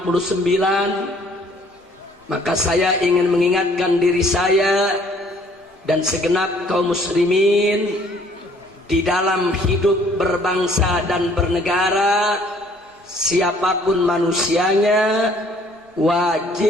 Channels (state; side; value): normal; both; correlation 0.59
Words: maka saya ingin mengingatkan diri saya dan segenap kaum muslimin di dalam hidup berbangsa dan bernegara, siapapun manusianya